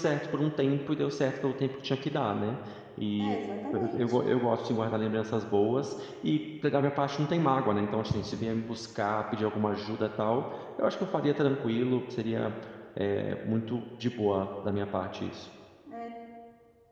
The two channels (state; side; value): identical; both; correlation 1.00